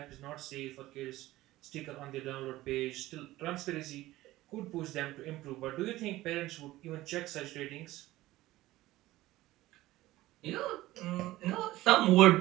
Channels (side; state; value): left; quieter; 16.9 dB